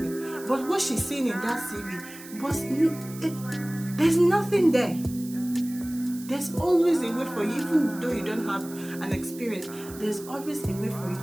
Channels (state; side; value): noise; right; hiss, 17 dB below the sound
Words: But what she's seeing in that CV was, there's nothing there. There's always a way for you, even though you don't have an experience, there's always a way for you